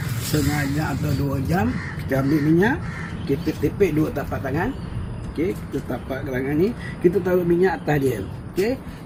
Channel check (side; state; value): both; identical; correlation 1.00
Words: setengah jam atau 2 jam, kita ambil minyak, kita tepek 2 tapak tangan. Okey, kita tapak tangan ni, kita taruh minyak atas dia. Okey,